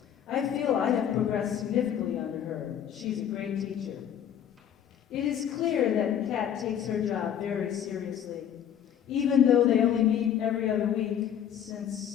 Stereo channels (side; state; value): right; quieter; 9.4 dB